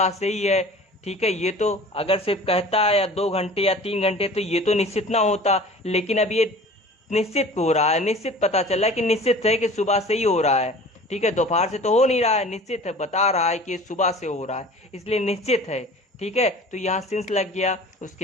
से ही है। ठीक है, ये तो अगर सिर्फ कहता है या 2 घंटे या 3 घंटे तो ये तो निश्चित ना होता, लेकिन अब ये निश्चित हो रहा है, निश्चित पता चला कि निश्चित है कि सुबह से ही हो रहा है। ठीक है, दोपहर से तो हो नहीं रहा है, निश्चित है, बता रहा है कि सुबह से हो रहा है, इसलिए निश्चित है। ठीक है, तो यहाँ सिंस लग गया।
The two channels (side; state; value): both; normal; correlation 0.42